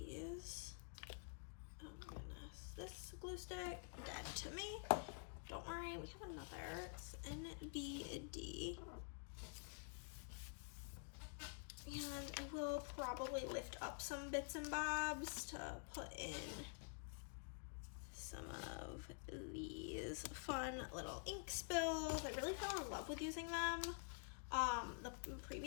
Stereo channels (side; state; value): right; quieter; 39.6 dB